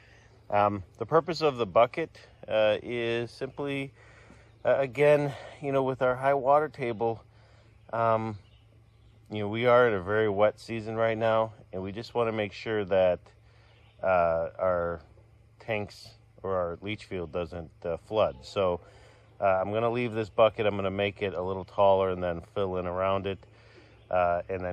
The purpose of the bucket is simply, again, with our high water table, we are in a very wet season right now, and we just want to make sure that our tanks or our leach field doesn't flood. So I'm going to leave this bucket. I'm going to make it a little taller and then fill in around it, and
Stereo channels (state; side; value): identical; both; correlation 1.00